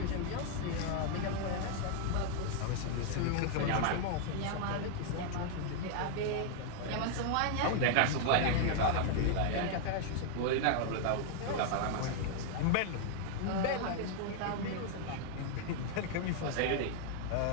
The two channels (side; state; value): both; different; correlation 0.00